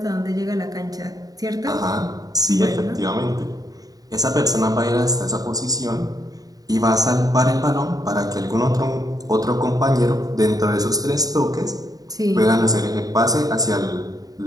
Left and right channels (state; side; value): late; left; 0.18 ms